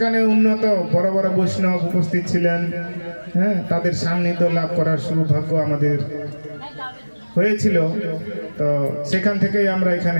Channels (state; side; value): inverted; both; correlation -1.00